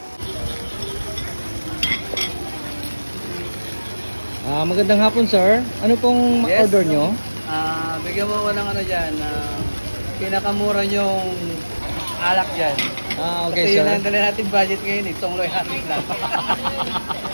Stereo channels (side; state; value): both; inverted; correlation -1.00